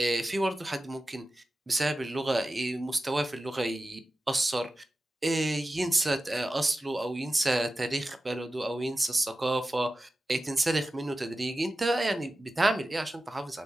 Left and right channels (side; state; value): both; normal; correlation 0.94